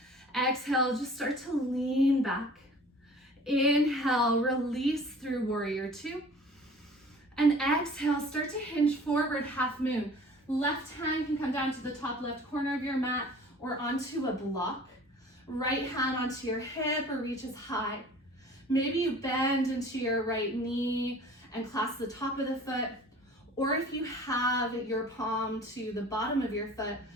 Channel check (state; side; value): normal; both; correlation 0.46